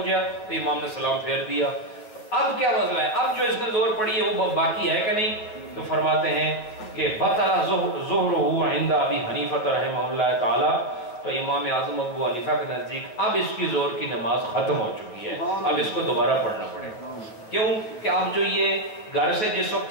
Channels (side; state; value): right; late; 9.5 ms